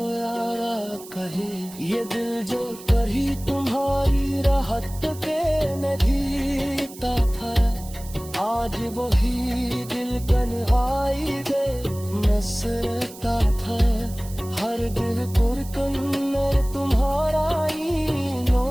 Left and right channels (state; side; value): noise; right; hiss, 17 dB below the sound